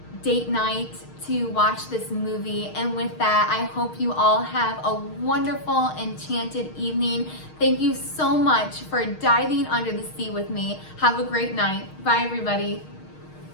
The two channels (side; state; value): right; late; 6.4 ms